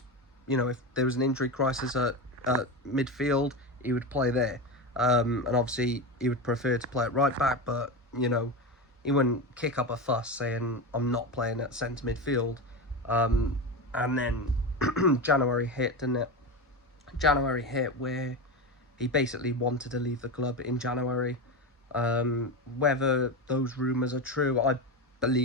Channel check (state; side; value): normal; both; correlation 0.19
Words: You know, if there was an injury crisis at midfield, he would play there. And obviously he would prefer to play at right back, but, you know, he wouldn't kick up a fuss saying, I'm not playing at centre midfield. And then January hit, didn't it? January hit where he basically wanted to leave the club in January. Whether those rumours are true, I